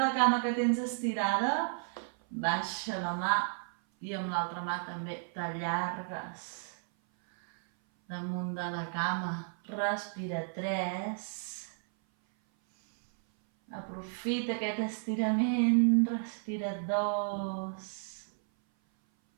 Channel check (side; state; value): left; silent; 56 dB below the other